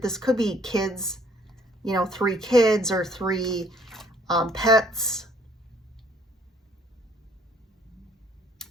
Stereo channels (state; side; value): normal; both; correlation 0.61